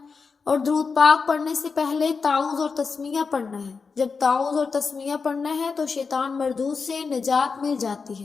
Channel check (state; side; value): quieter; right; 5.0 dB